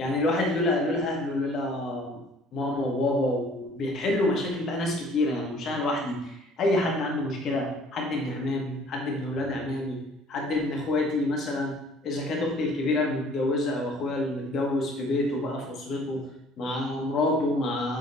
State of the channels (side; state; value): both; normal; correlation 0.54